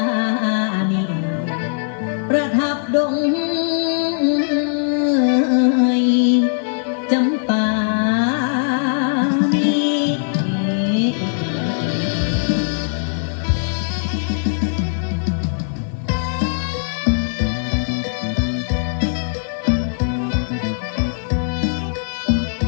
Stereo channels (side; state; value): right; silent; 66 dB below the other